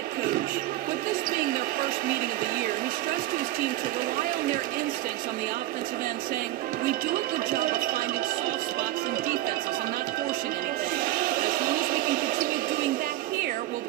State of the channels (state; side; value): quieter; left; 15.5 dB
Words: coach. With this being their first meeting of the year, he stressed to his team to rely on their instincts on the offensive end, saying, "We do a good job of finding soft spots in defenses and not forcing anything. As long as we can continue doing that here, we'll